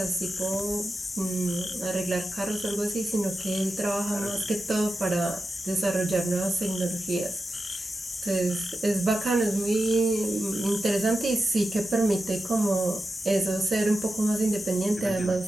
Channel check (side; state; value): both; normal; correlation 0.91